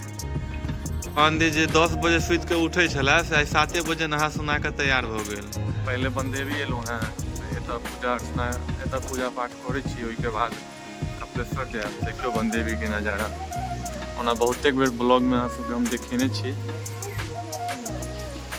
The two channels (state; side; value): identical; both; correlation 1.00